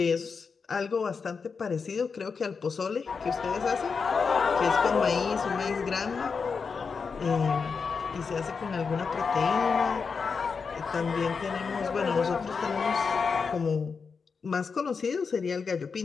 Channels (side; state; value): right; quieter; 5.3 dB